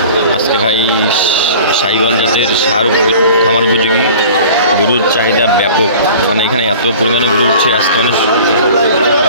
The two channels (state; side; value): inverted; both; correlation -0.43